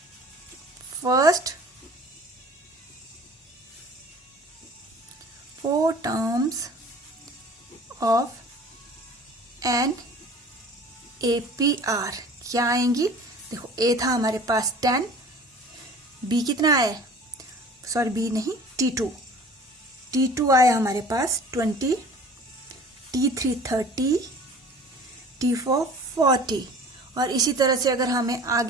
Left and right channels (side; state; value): both; normal; correlation 0.45